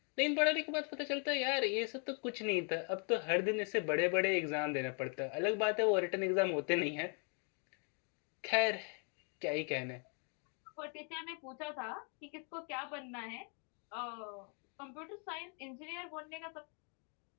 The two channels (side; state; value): right; quieter; 39.3 dB